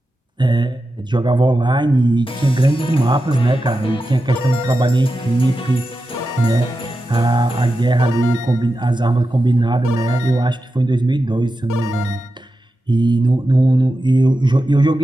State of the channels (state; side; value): normal; both; correlation 0.91